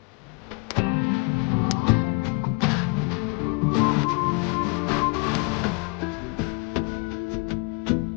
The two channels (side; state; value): right; quieter; 31.3 dB